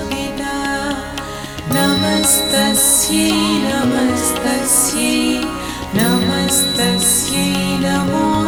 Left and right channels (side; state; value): both; identical; correlation 1.00